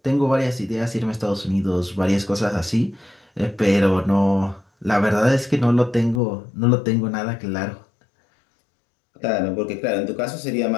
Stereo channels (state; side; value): drops out; right; at 6.2 s